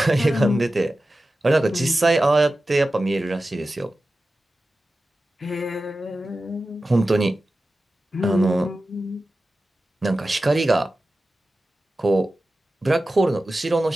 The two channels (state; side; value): normal; both; correlation 0.94